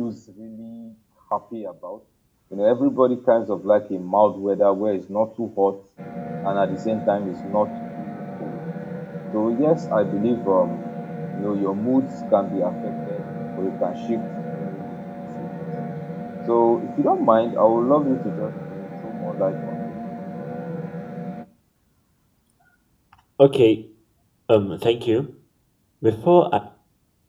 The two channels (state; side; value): identical; both; correlation 1.00